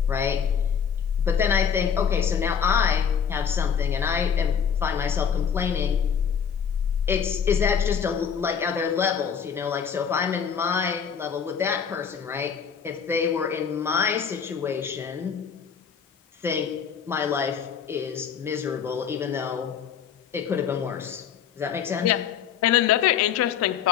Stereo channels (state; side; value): quieter; right; 7.4 dB